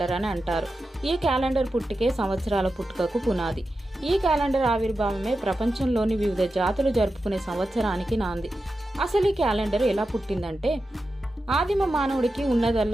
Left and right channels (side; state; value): both; normal; correlation 0.91